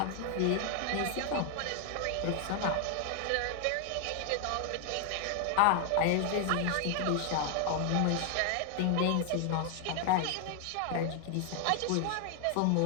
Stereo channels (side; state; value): both; different; correlation 0.00